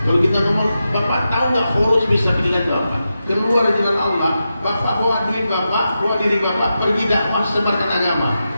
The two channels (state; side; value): inverted; both; correlation -0.89